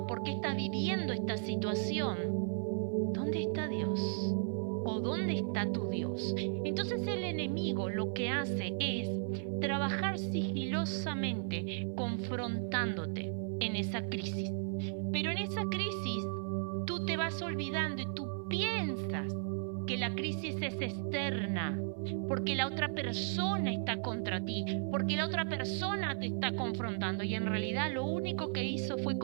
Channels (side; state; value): left; silent; 54 dB below the other